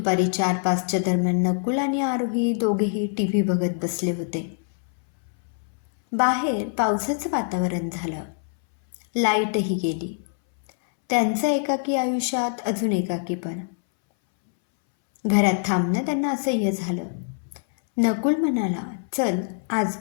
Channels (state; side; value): silent; right; 62 dB below the other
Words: 4-5च्या दरम्यान नकुल आणि आरोही दोघेही टीव्ही बघत बसले होते. बाहेर पावसाचं वातावरण झालं. लाईटही गेली. त्यांचं एकाकी आयुष्यात अजून एकाकीपण. घरात थांबणं त्यांना असह्य झालं. नकुल म्हणाला, चल आज